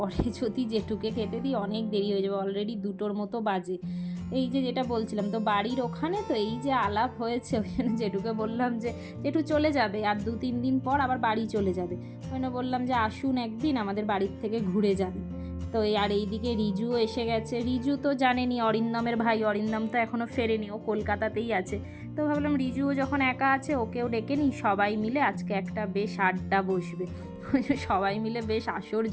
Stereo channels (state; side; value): identical; both; correlation 1.00